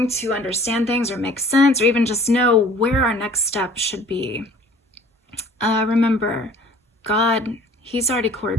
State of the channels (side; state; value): both; normal; correlation 0.51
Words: to understand things or make sense, or even just know where our next step should be, remember, God, He's already